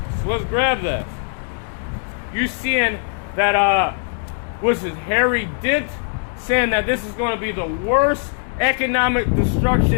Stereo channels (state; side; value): silent; right; 65 dB below the other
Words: So let's grab that. You seeing that, what's his, Harry Dent, saying that this is going to be the worst economic